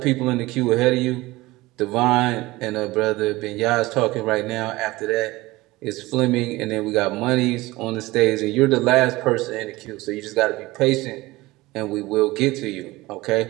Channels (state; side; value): quieter; left; 19.8 dB